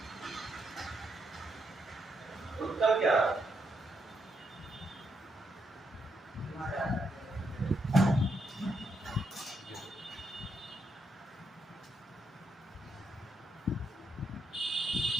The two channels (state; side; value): normal; both; correlation 0.79